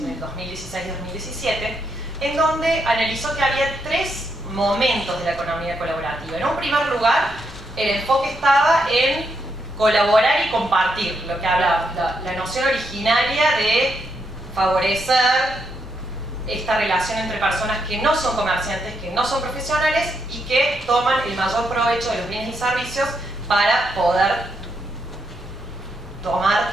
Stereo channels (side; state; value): both; normal; correlation 0.80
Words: el 2016-2017, en donde analizó que había 3 momentos de la economía colaborativa. En un primer lugar, el enfoque estaba en colaborar y compartir, lo que hablaba, la noción originaria de favorecer esta relación entre personas que no son comerciantes, que no son profesionales y que toman el mayor provecho de los bienes y servicios para poder tomar